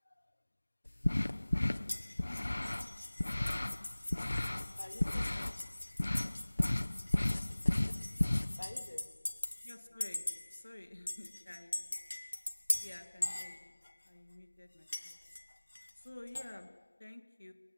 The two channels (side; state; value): both; inverted; correlation -1.00